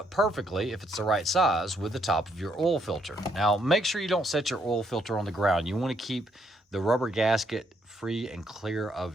perfectly if it's the right size with the top of your oil filter. Now, make sure you don't set your oil filter on the ground. You want to keep the rubber gasket free and clear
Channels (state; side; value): normal; both; correlation 0.73